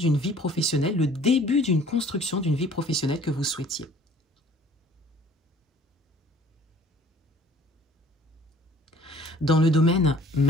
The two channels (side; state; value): both; normal; correlation 0.53